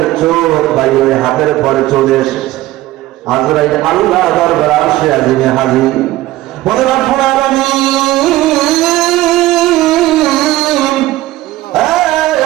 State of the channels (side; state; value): left; quieter; 16.5 dB